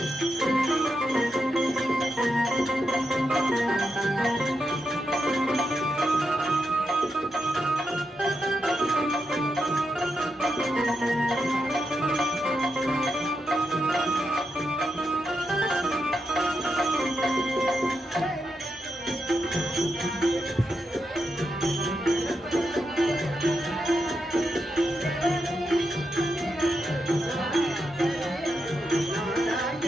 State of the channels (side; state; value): both; normal; correlation 0.85